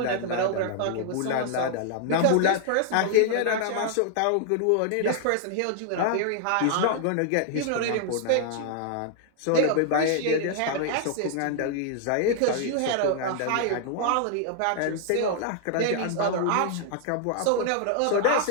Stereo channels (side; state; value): both; different; correlation -0.01